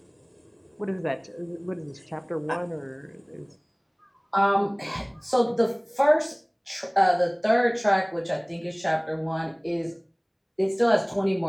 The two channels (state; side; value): identical; both; correlation 1.00